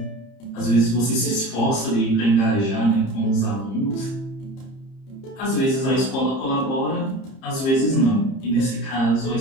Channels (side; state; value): right; late; 30 ms